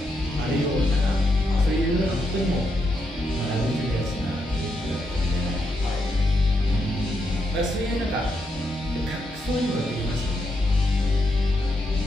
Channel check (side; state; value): both; normal; correlation 0.81